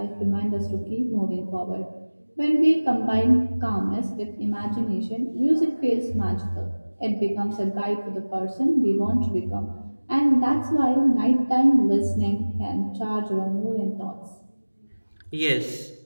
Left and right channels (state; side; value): inverted; both; correlation -1.00